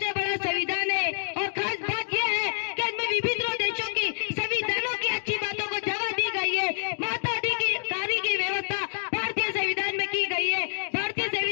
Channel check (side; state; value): right; silent; digital silence